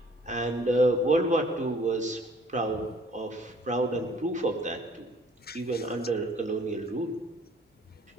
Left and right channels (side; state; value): both; normal; correlation 0.57